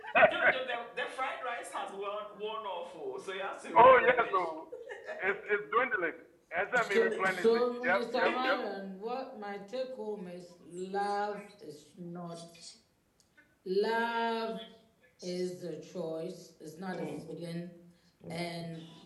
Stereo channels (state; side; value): identical; both; correlation 1.00